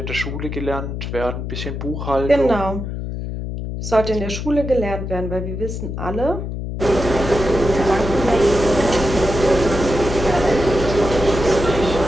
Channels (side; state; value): left; noise; hum, 5 dB below the sound